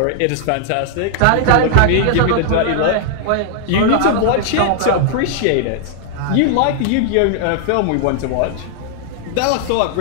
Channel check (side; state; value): both; different; correlation -0.01